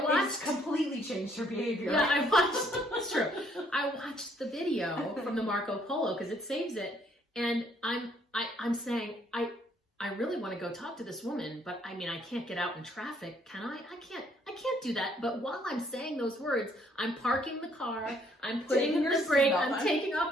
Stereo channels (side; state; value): both; normal; correlation 0.66